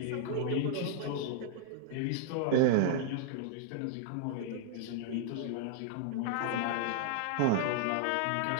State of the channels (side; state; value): both; different; correlation -0.01